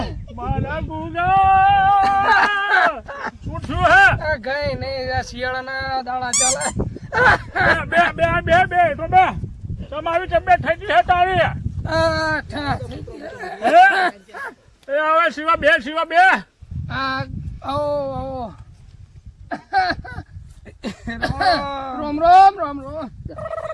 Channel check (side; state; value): both; identical; correlation 1.00